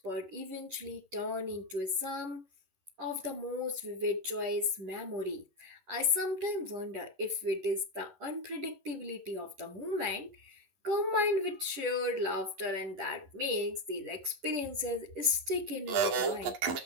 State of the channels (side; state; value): left; late; 11 ms